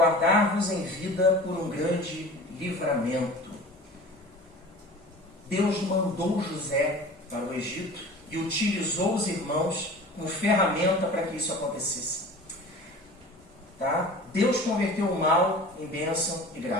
em vida por um grande livramento. Deus mandou José para o Egito e utilizou os irmãos como ferramenta para que isso acontecesse. Tá? Deus converteu o mal em bênção e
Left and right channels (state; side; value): normal; both; correlation 0.39